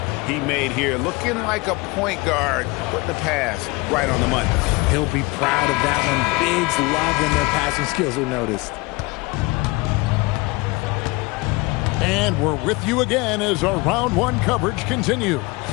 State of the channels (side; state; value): right; quieter; 24.1 dB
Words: he made here? Looking like a point guard, putting the pass right on the money. He'll be proud of that one. Bigs love when their passing skills are noticed. And we're with you again as our round one coverage continues.